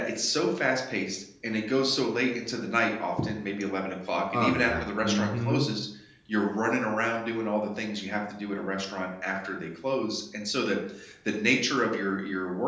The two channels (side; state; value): both; identical; correlation 1.00